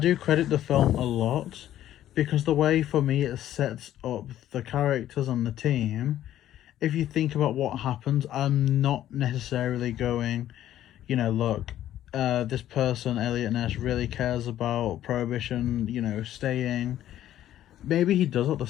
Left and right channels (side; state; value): right; quieter; 12.4 dB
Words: credit the film a lot, because the way, for me, it sets up the characters and the team, if you think about what happens, I'm not necessarily going, look, this person, Elliot Ness, really cares about Prohibition, staying. Maybe he does at the